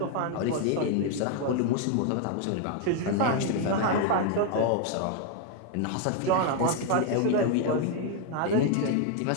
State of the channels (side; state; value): both; different; correlation 0.01